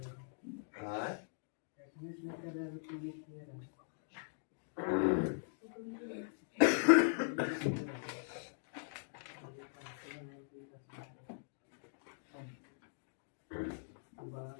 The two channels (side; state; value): right; silent; digital silence